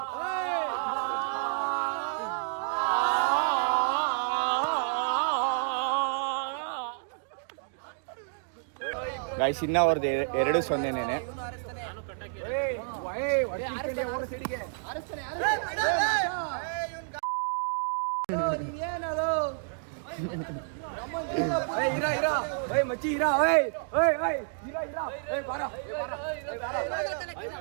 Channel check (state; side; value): silent; left; digital silence